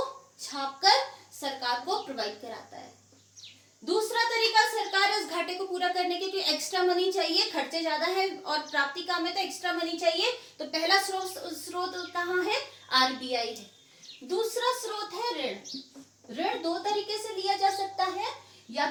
छापकर सरकार को प्रोवाइड कराता है। दूसरा तरीका, सरकार इस घाटे को पूरा करने के लिए एक्स्ट्रा मनी चाहिए, खर्चे ज्यादा है और प्राप्ति कम है तो एक्स्ट्रा मनी चाहिए, तो पहला स्रोत कहाँ है? आरबीआई है। दूसरा स्रोत है ऋण। ऋण दो तरीके से लिया जा सकता है, या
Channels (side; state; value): both; identical; correlation 1.00